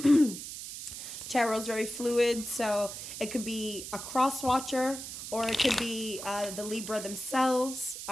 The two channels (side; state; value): right; noise; hiss, 9 dB below the sound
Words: tarot's very fluid, so it could be a cross watcher or it could be the Libra themselves